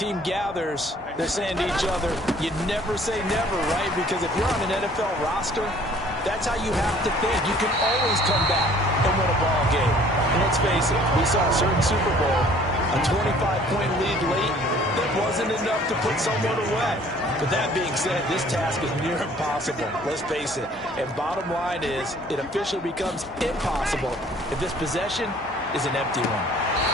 gathers, they're saying to each other, you never say never, right? Because if you're on an NFL roster, that's how you have to think. You can always come back and win a ball game. And let's face it, we saw a certain Super Bowl, a 25-point lead late that wasn't enough to put someone away. But that being said, this task is near impossible. Let's face it. And bottom line is, it officially becomes impossible if this possession is an empty one.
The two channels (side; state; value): both; normal; correlation 0.55